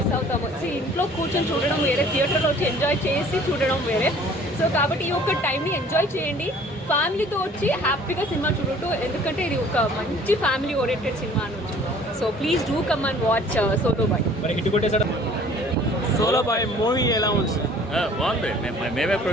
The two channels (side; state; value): both; normal; correlation 0.52